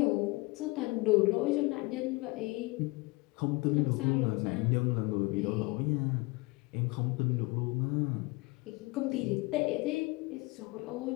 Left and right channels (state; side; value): quieter; right; 24.2 dB